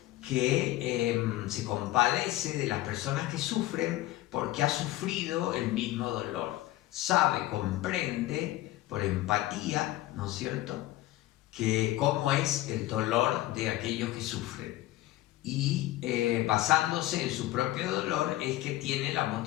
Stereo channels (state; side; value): quieter; right; 16.1 dB